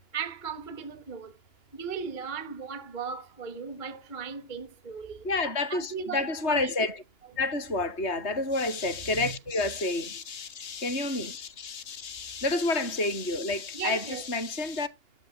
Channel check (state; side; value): late; right; 3.2 ms